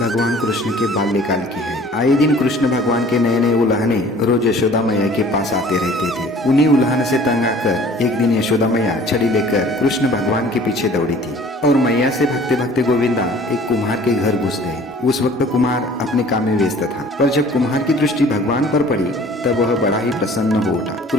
कृष्ण के बाल्यकाल की है। आए दिन कृष्ण भगवान के नए नए उल्हाने रोज यशोदा मैया के पास आते रहते थे। उन्हीं उल्हान से तंग आकर एक दिन यशोदा मैया छड़ी लेकर कृष्ण भगवान के पीछे दौड़ी थी और मैया से भगते भगते गोविंदा एक कुम्हार के घर घुस गए। उस वक्त कुम्हार अपने काम में व्यस्त था, पर जब कुम्हार की दृष्टि भगवान पर पड़ी तब वह बड़ा ही प्रसन्न हो उठा।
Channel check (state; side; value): normal; both; correlation 0.50